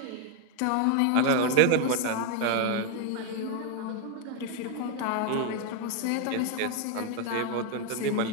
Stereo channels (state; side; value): different; both; correlation 0.01